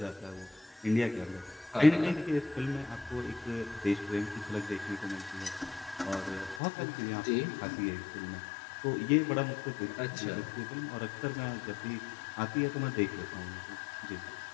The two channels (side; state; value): right; drops out; at 6.6 s